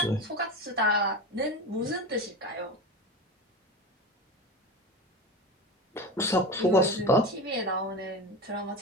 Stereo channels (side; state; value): both; normal; correlation 0.26